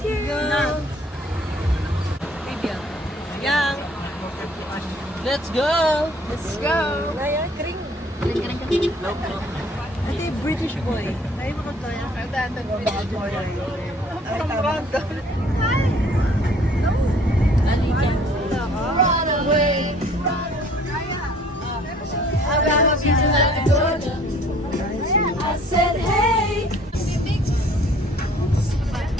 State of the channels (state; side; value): normal; both; correlation 0.56